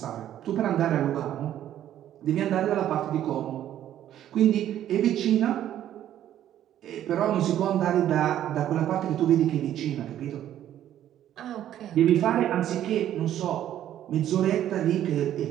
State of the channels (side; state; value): left; quieter; 11.6 dB